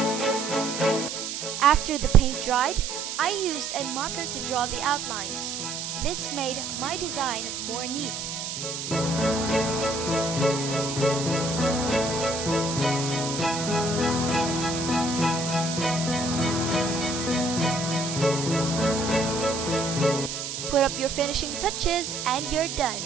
After the paint dried, I used a marker to draw the outlines. This made my design more neat. Put up your finishing touches and you're done.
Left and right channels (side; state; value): right; noise; hiss, 5 dB below the sound